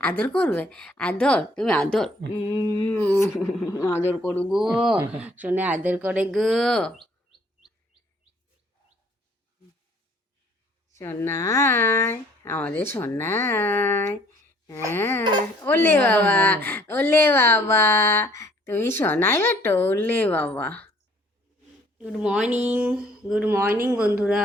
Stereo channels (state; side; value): normal; both; correlation 0.59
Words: আদর করবে? আদর, তুমি আদর আদর করু গো শোনে, আদর করে গো সোনাই, আমাদের সোনাই। হ্যাঁ, ওলে বাবা, ওলে বাবা, তুমি সোনাই বেটো, ওলে বাবা। গুড মর্নিং, গুড মর্নিং